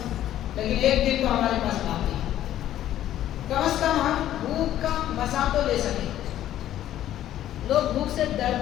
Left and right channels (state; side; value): quieter; right; 12.3 dB